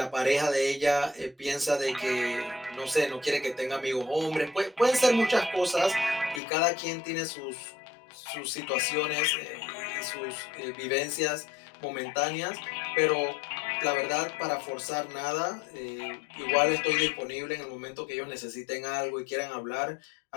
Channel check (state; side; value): drops out; right; at 6.4 s